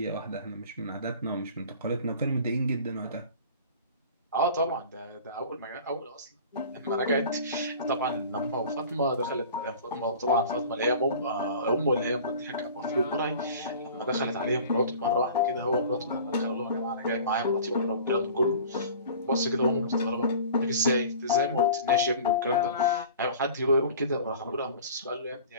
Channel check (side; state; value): both; inverted; correlation -0.42